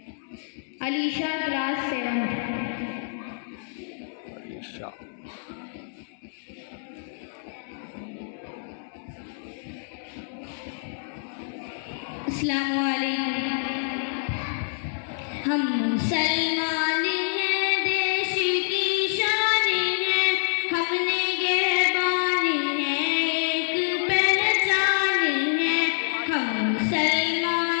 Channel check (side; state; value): right; silent; digital silence